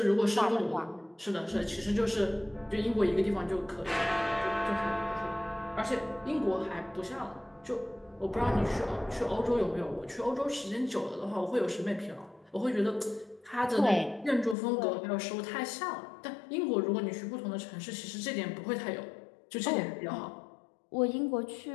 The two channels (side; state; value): right; drops out; at 14.6 s